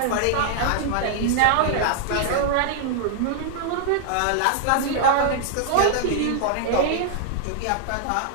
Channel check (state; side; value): different; both; correlation -0.01